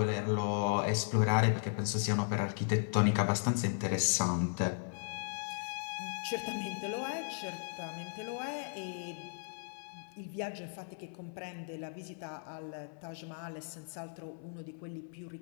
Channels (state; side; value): silent; right; 54 dB below the other